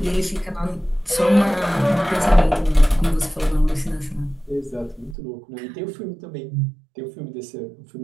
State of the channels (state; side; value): drops out; left; at 5.2 s